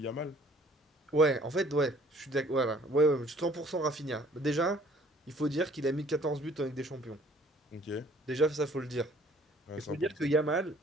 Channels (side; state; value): both; normal; correlation 0.57